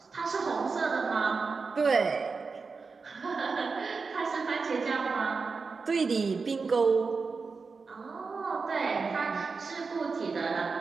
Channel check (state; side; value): quieter; left; 4.6 dB